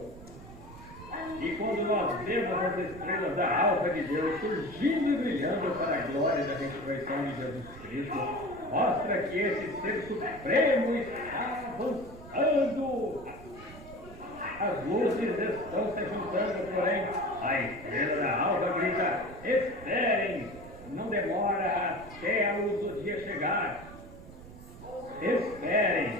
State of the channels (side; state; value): right; noise; rumble, 16 dB below the sound